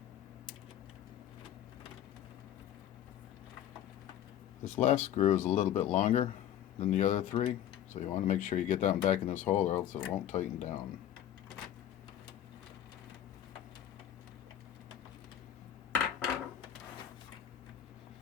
This last screw is a little bit longer than the other 3, so you want to make sure you get that one back in this hole or else it won't tighten down.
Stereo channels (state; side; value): quieter; right; 11.0 dB